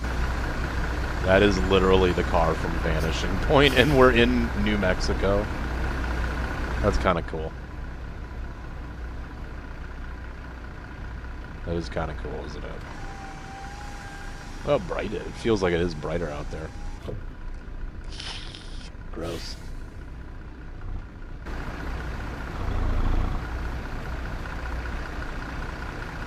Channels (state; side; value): identical; both; correlation 1.00